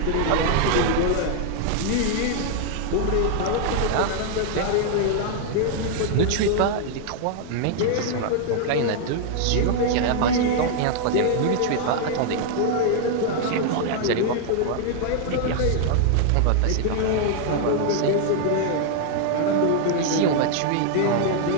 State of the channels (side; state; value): both; different; correlation 0.00